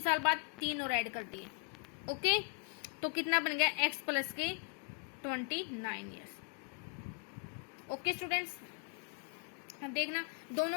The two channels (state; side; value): quieter; right; 37.1 dB